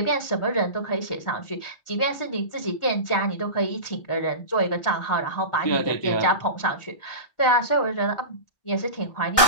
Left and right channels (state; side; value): late; right; 1.6 ms